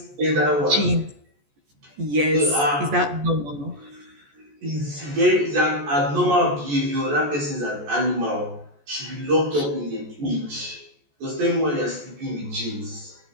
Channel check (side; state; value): left; late; 14 ms